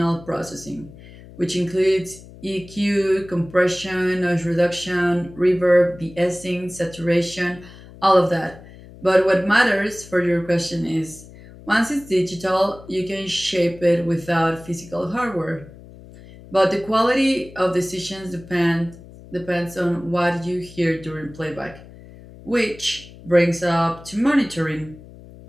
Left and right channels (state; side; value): noise; left; hum, 19 dB below the sound